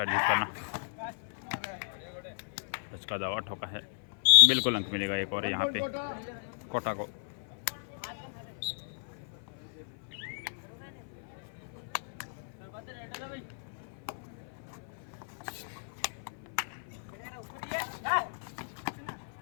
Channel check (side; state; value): right; silent; 55 dB below the other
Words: करना। उसका दावा ठोका है। बिल्कुल अंक मिलेगा एक और यहाँ पे कोटा को।